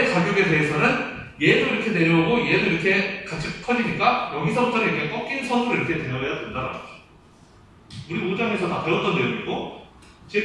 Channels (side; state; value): both; identical; correlation 1.00